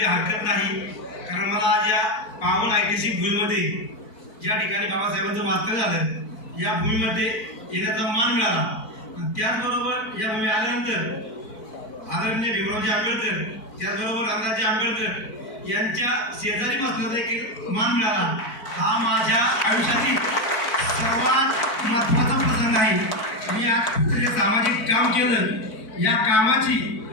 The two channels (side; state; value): right; late; 4.5 ms